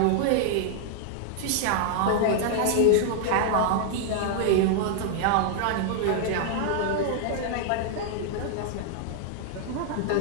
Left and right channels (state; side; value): different; both; correlation 0.00